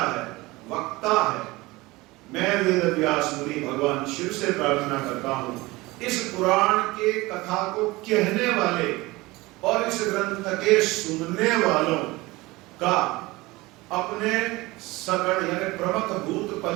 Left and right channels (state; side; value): quieter; left; 21.2 dB